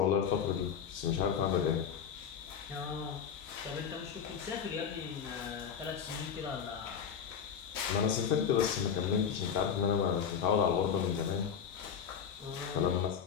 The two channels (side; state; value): right; quieter; 7.7 dB